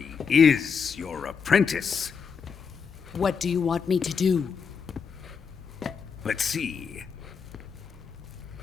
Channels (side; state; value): right; quieter; 6.2 dB